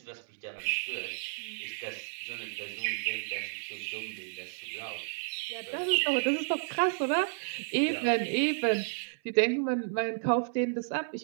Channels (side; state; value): left; silent; 57 dB below the other